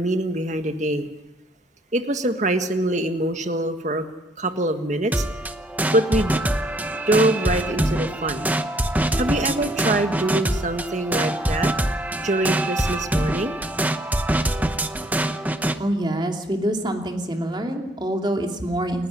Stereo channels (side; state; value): both; normal; correlation 0.64